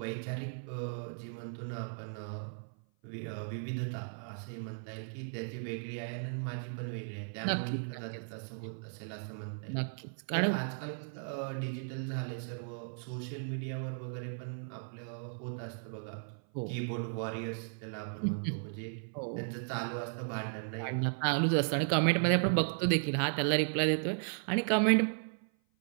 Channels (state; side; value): silent; left; 54 dB below the other